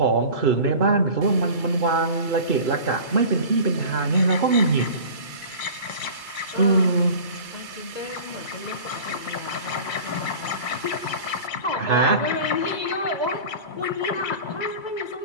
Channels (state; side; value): late; right; 2.3 ms